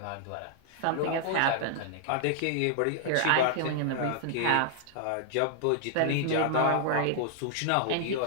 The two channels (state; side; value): different; both; correlation -0.01